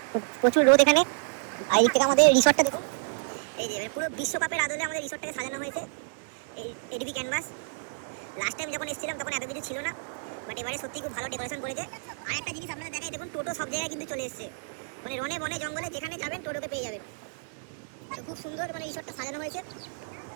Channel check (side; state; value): left; silent; digital silence